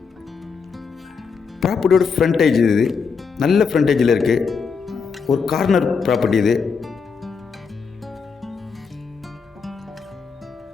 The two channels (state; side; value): quieter; right; 5.6 dB